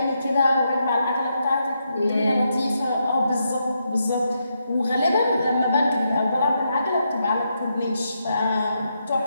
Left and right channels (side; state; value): both; inverted; correlation -0.81